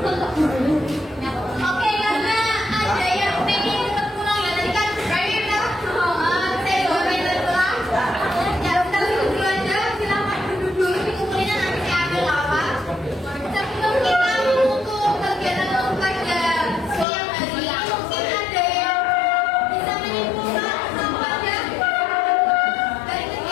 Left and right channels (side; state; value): right; drops out; at 17.1 s